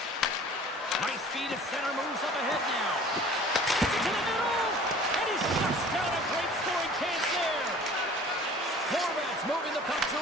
Nice feed at center, moves up ahead now. To the middle, and he shuts down a great scoring chance there. Horvath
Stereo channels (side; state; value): both; normal; correlation 0.47